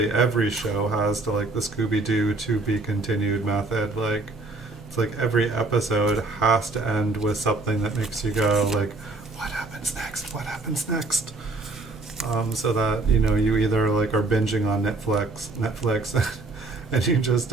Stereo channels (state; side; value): quieter; left; 3.2 dB